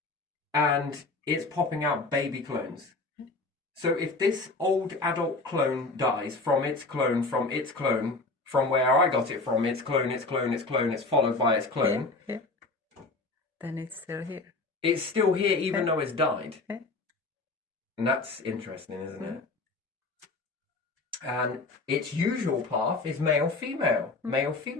And it's popping out baby clones. So if this old adult clone dies from its clone, from its clone, from where I got it from, its clone, its clone, its clone, it's followed by its clone. Then it's still here. It's still here even though it's died. And that's interesting, isn't it? And its usual path is male-female,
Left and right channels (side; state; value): right; quieter; 3.5 dB